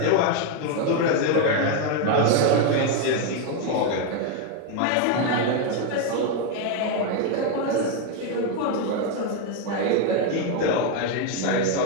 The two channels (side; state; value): both; different; correlation 0.01